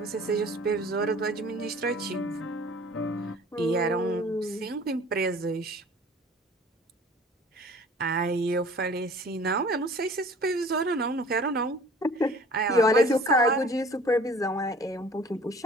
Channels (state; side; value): normal; both; correlation 0.49